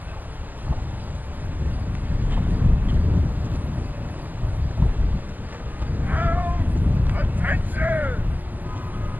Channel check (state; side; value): late; left; 0.084 ms